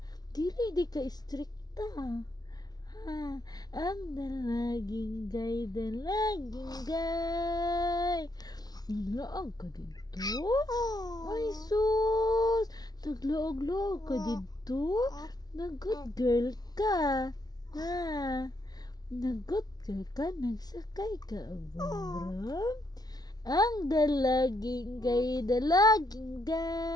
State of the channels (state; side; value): late; right; 0.19 ms